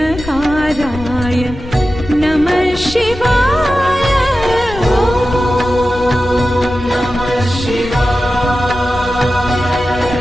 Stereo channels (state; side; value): noise; left; rumble, 13 dB below the sound